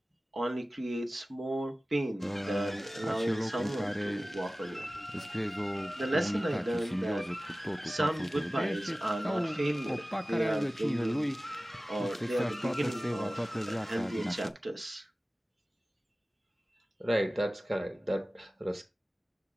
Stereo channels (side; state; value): both; normal; correlation 0.97